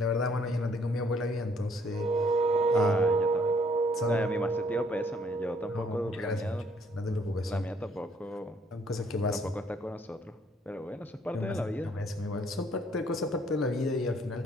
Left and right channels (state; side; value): normal; both; correlation 0.65